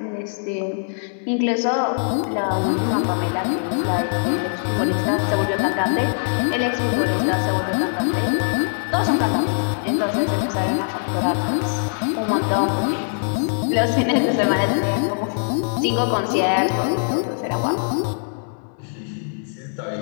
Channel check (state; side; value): silent; right; 64 dB below the other